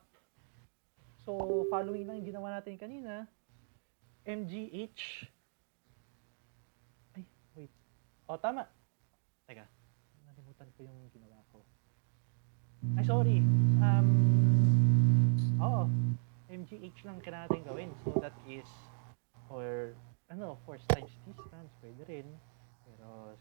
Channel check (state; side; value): silent; left; digital silence